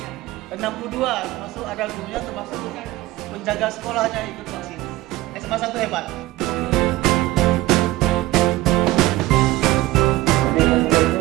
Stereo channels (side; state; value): left; quieter; 17.4 dB